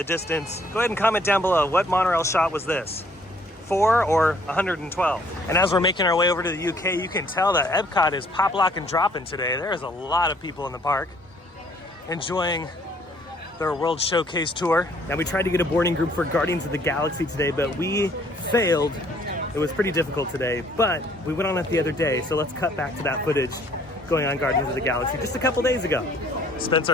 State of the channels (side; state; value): both; normal; correlation 0.61